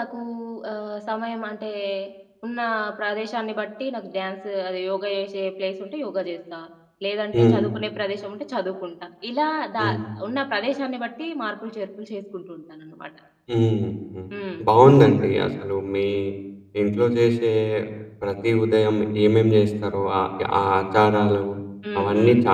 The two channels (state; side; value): identical; both; correlation 1.00